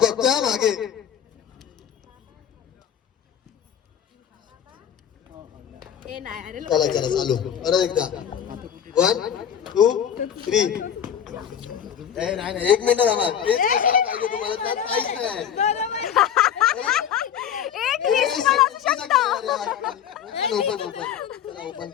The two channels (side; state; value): right; quieter; 8.9 dB